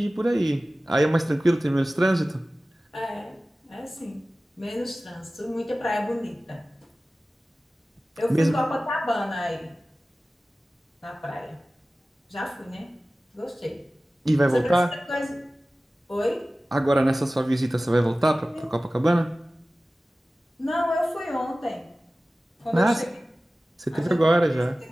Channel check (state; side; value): normal; both; correlation 0.96